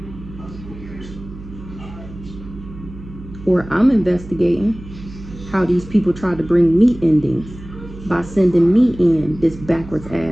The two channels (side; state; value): right; noise; hum, 15 dB below the sound